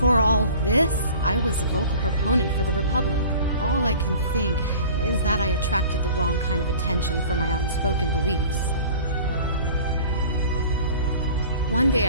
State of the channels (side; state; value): both; inverted; correlation -0.44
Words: all this, I was a vocal proponent for the Republic. All I can think is that I attracted the wrong kind of attention for my outspoken beliefs. One day